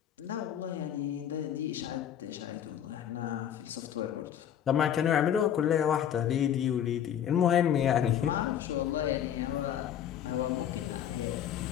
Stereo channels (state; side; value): quieter; right; 9.8 dB